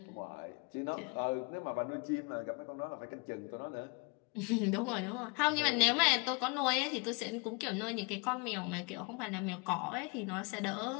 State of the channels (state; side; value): quieter; right; 30.7 dB